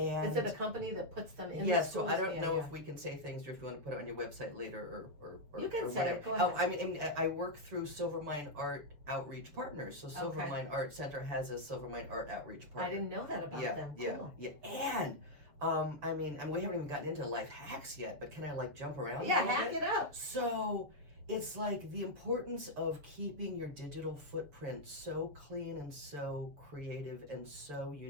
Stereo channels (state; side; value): late; left; 7.0 ms